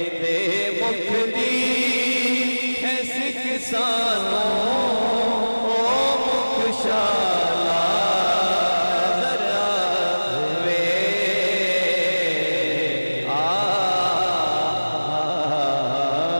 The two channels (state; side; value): inverted; both; correlation -1.00